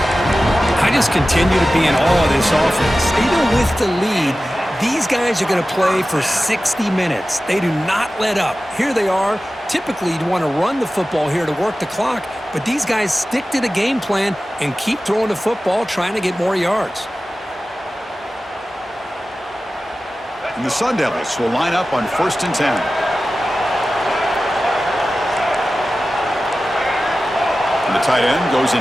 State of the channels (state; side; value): normal; both; correlation 0.95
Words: I just continue to be in awe of this offense. Even with the lead, these guys are going to play for 60 minutes. They do not let up. Here they are, Typically, you'd want to run the football here to work the clock, but these guys stick to the game plan and keep throwing the football, trying to get more yards. And the Sun Devils will line up on 1st and 10. And the tight end goes in